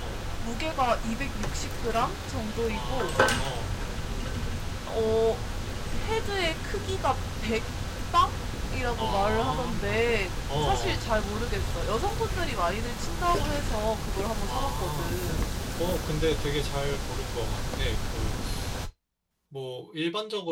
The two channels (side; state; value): both; identical; correlation 1.00